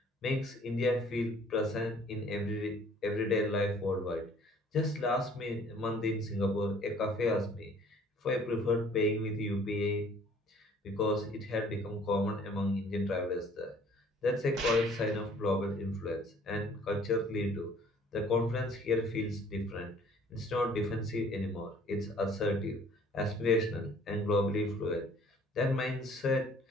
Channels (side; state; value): both; normal; correlation 0.55